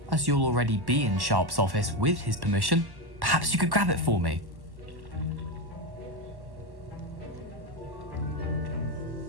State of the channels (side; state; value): left; late; 1.1 ms